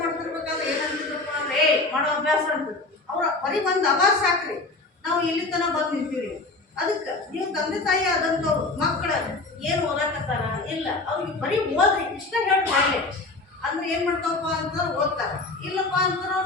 ಮಾಡ್ತಿರ್ಬೇಕಾದ್ರೆ ಏನಂತಿದ್ರಪ್ಪ ಅಂದ್ರೆ ಮಾಡೋ ಅಭ್ಯಾಸ ಅಂತಿದ್ರು. ಅವ್ರ ಬರೀ ಒಂದು ಅಭ್ಯಾಸ ಸಾಕ್ರಿ, ನಾವು ಇಲ್ಲಿ ತನಕ ಬಂದು ನಿಂತೀವಿ. ಅದಕ್ಕೆ ನೀವು ತಂದೆ ತಾಯಿ ಆದಂಥವ್ರು ಮಕ್ಕಳು ಏನು ಓದಾಕತ್ತಾರ ಇಲ್ಲ, ಅವ್ರಿಗೆ ಬರೀ ಓದ್ರಿ ಇಷ್ಟ ಹೇಳಿ ಮಾಡಲಿ ಅಂದ್ರೆ ಏನು ಮಾಡ್ತಾವಪ್ಪ ಅಂತಂದ್ರೆ ಓದ್ತಾರೆ. ಇಲ್ಲಪ್ಪ ಅಂತಂದ್ರೆ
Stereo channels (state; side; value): quieter; right; 3.3 dB